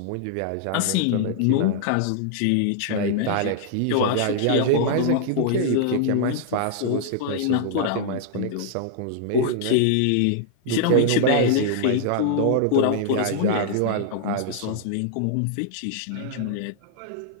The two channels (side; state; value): both; different; correlation -0.01